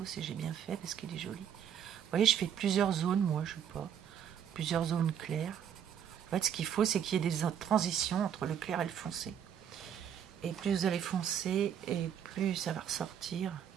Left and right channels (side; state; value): left; quieter; 8.8 dB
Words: et j'ai bien fait parce qu'il est joli. Vous voyez, je fais plusieurs zones, moi, je sais pas, plusieurs zones claires. En fait, ce qu'il faut, c'est qu'il y ait des transitions entre le clair et le foncé. Et plus vous allez foncer, et plus ça va ressortir.